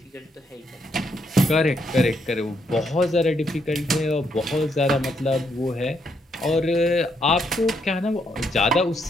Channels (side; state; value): both; normal; correlation 0.76